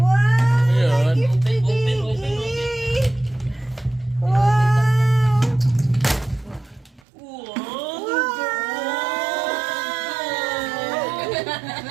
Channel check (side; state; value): left; drops out; at 7.0 s